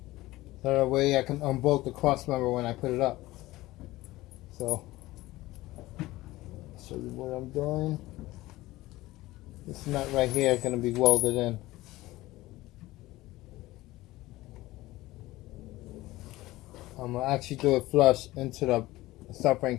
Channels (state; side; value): quieter; right; 18.1 dB